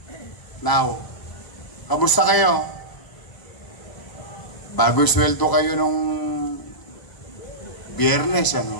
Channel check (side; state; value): right; late; 1.0 ms